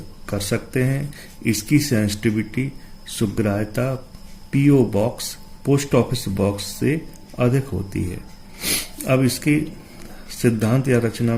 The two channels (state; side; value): identical; both; correlation 1.00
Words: कर सकते हैं। इसकी सेंसिटिविटी सुग्राह्यता PO box, post office box से अधिक होती है। अब इसकी सिद्धांत या रचना